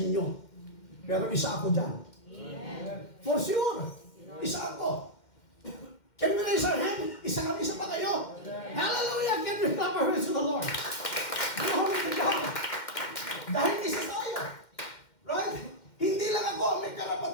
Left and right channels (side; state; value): right; late; 2.1 ms